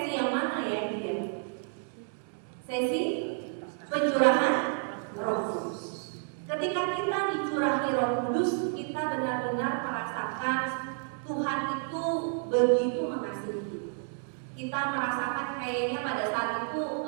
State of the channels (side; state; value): left; silent; 57 dB below the other